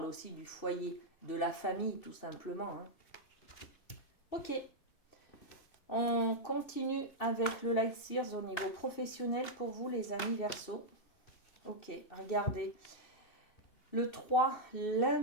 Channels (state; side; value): late; right; 2.7 ms